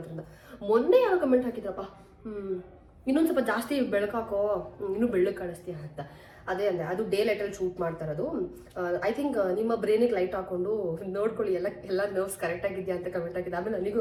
ಮೊನ್ನೆ ಯಾರೋ ಕಮೆಂಟ್ ಹಾಕಿದ್ರಪ್ಪ, ಇನ್ನೊಂದು ಸ್ವಲ್ಪ ಜಾಸ್ತಿ ಬೆಳಕಾಕೋ, ಇನ್ನೂ ಬೆಳ್ಳಗೆ ಕಾಣಿಸ್ತೀಯ ಅಂತ. ಅದೇ ಅಂದರೆ ಅದು ಡೇ ಲೈಟಲ್ಲಿ ಶೂಟ್ ಮಾಡ್ತಾ ಇರೋದು. ಐ ಥಿಂಕ್ ನಿಮ್ಮ ಬ್ರೈನಿಗೆ ಲೈಟ್ ಹಾಕೊಂಡು ನೋಡ್ಕೊಳ್ಳಿ ಎಲ್ಲ ನರ್ವ್ಸ್ ಕರೆಕ್ಟಾಗಿದೆಯಾ ಅಂತ ಕಮೆಂಟ್ ಆಗಿದೆ. ಆಮೇಲೆ ನನಗೂ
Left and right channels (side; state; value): both; identical; correlation 1.00